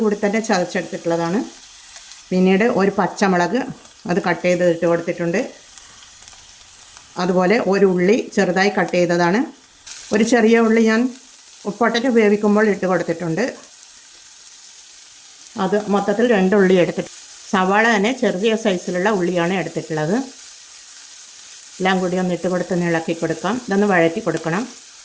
കൂടി തന്നെ ചതച്ചെടുത്തിട്ടുള്ളതാണ്. പിന്നീട് ഒരു പച്ചമുളക് അത് കട്ട് ചെയ്ത് ഇട്ട് കൊടുത്തിട്ടുണ്ട്. അതുപോലെ ഒരു ഉള്ളി ചെറുതായി കട്ട് ചെയ്തതാണ്. ഒരു ചെറിയ ഉള്ളി ഞാൻ പൊട്ടറ്റോ വേവിക്കുമ്പോൾ ഇട്ട് കൊടുത്തിട്ടുണ്ട്. അത് മൊത്തത്തിൽ 2 ഉള്ളി എടുത്തിട്ട്, സവാള തന്നെ ചെറിയ സൈസിലുള്ള ഉള്ളിയാണ് എടുത്തിട്ടുള്ളത്. എല്ലാം കൂടി ഒന്ന് ഇട്ട് കൊടുത്ത് ഇളക്കി കൊടുക്കാം. ഇതൊന്ന് വഴറ്റി കൊടുക്കണം.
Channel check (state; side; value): identical; both; correlation 1.00